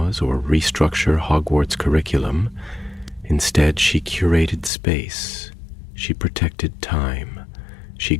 or restructure Hogwarts' curriculum. Instead, she curated space. She protected time. She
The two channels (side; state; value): right; drops out; at 4.7 s